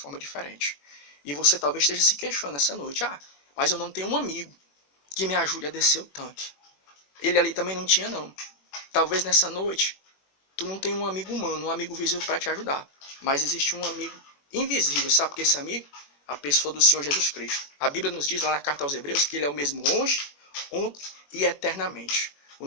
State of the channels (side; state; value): right; late; 21 ms